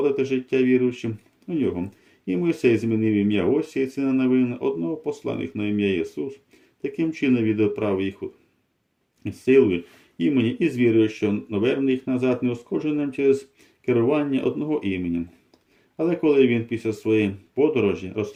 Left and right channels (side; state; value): both; identical; correlation 1.00